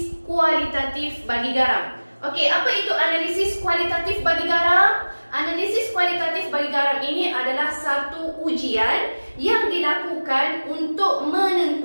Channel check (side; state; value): both; inverted; correlation -1.00